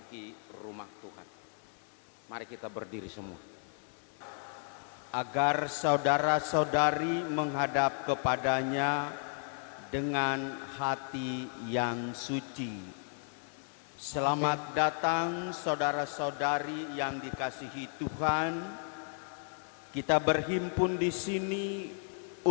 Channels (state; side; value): silent; right; 55 dB below the other